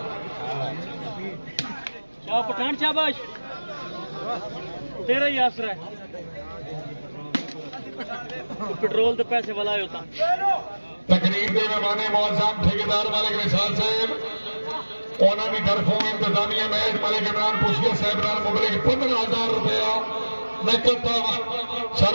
पठान, शाबाश, तेरा ही आसरा है। पेट्रोल के पैसे वाला होता। तकरीर के मेहमान मुअज़्ज़म ठेकेदार मालिक निसार साहब, उन्होंने तरफों इंतजामिया मैच मलिक इमरान पुछिया साहब नाल मुबलिक 15,000 रुपया नकद तावन। सर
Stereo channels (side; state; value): both; inverted; correlation -1.00